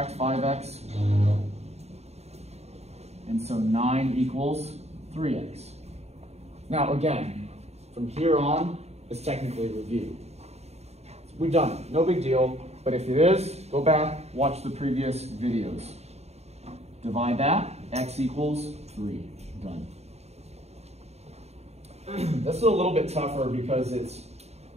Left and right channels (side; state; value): left; late; 0.31 ms